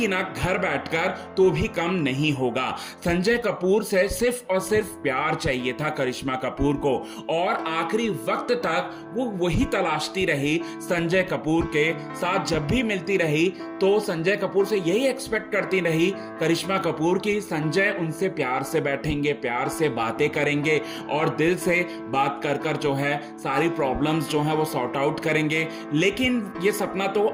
ना घर बैठकर तो भी कम नहीं होगा। संजय कपूर से सिर्फ और सिर्फ प्यार चाहिए था करिश्मा कपूर को और आखिरी वक्त तक वो वही तलाशती रही संजय कपूर के साथ। जब भी मिलती रही तो संजय कपूर से यही एक्सपेक्ट करती रही करिश्मा कपूर की संजय उनसे प्यार से बैठेंगे, प्यार से बातें करेंगे और दिल से बात कर कर जो है सारी प्रॉब्लम्स जो है वो सॉर्ट आउट करेंगे। लेकिन ये सपना तो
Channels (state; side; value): identical; both; correlation 1.00